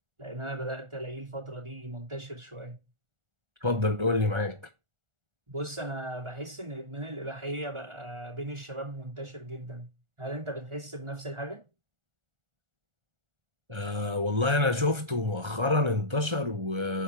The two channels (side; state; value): left; late; 1.3 ms